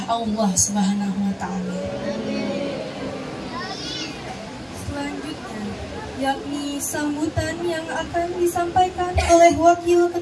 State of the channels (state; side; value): identical; both; correlation 1.00